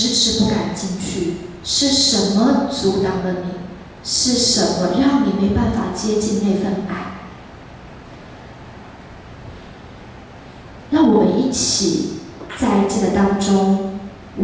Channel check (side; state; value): both; identical; correlation 1.00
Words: 迟不敢进去？是什么阻挡了你？是什么让你没办法接近那份爱？让我们一起在这个当中，我